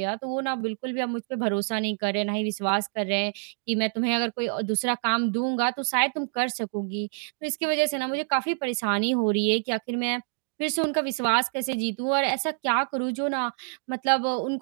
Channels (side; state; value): left; silent; 60 dB below the other